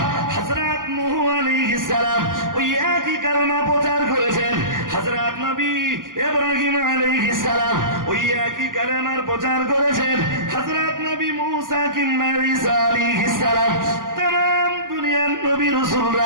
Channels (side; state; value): left; late; 0.89 ms